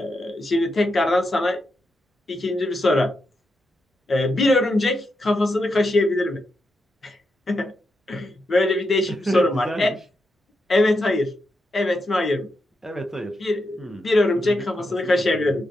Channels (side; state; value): both; normal; correlation 0.85